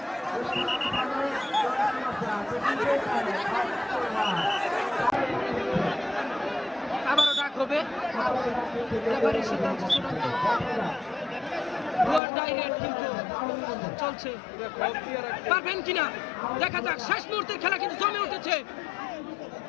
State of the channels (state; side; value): drops out; right; at 12.2 s